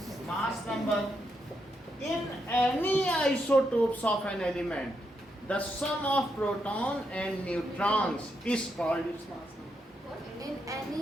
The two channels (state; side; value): normal; both; correlation 0.81